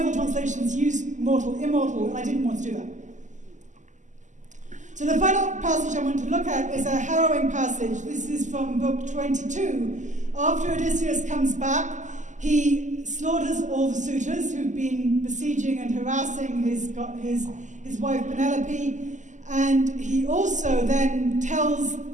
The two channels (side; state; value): left; late; 0.36 ms